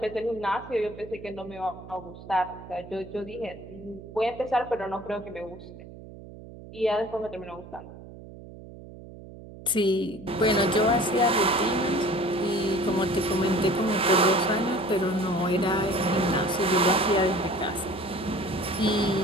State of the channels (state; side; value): noise; right; hum, 16 dB below the sound